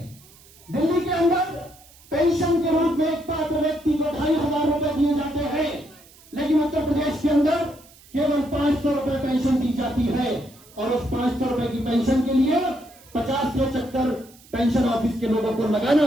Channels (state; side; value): noise; right; hiss, 25 dB below the sound